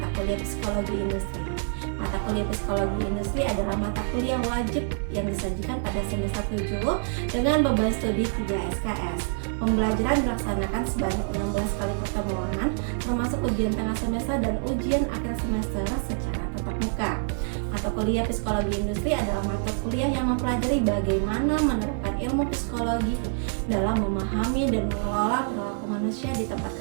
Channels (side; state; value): left; silent; 61 dB below the other